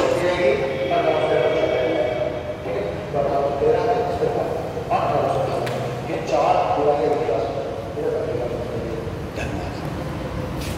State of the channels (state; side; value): identical; both; correlation 1.00